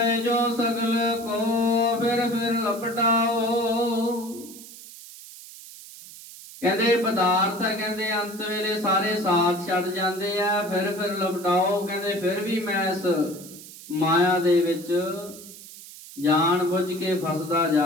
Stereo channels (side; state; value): right; noise; hiss, 16 dB below the sound